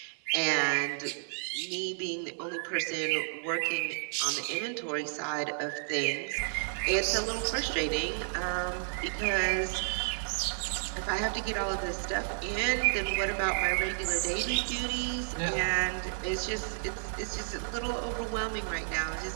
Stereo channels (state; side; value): silent; left; 57 dB below the other